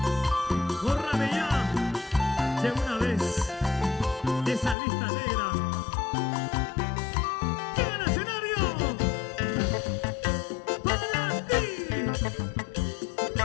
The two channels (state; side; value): drops out; right; at 4.8 s